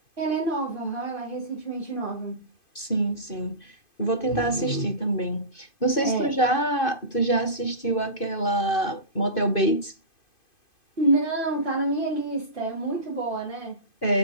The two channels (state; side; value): late; right; 2.5 ms